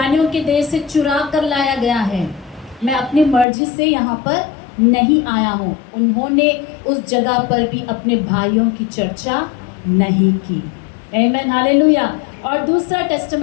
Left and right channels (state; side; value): drops out; right; at 3.5 s